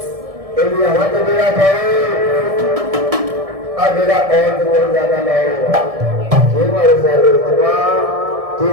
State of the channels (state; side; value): late; left; 1.6 ms